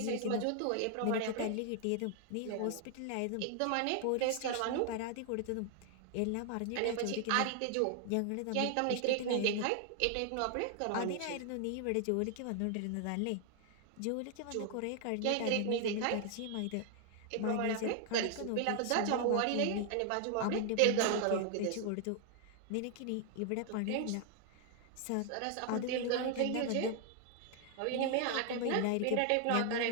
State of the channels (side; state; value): both; different; correlation 0.00